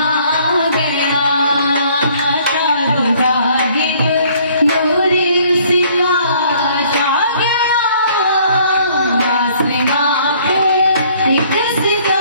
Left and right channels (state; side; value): inverted; both; correlation -0.60